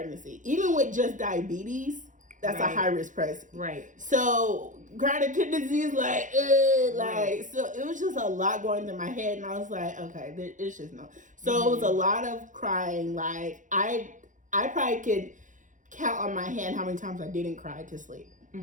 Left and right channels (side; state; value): left; late; 0.37 ms